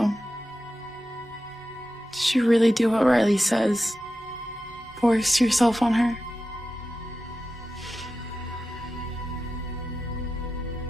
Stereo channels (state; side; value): normal; both; correlation 0.92